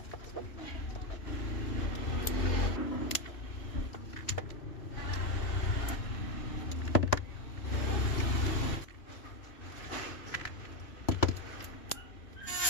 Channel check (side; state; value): right; late; 3.0 ms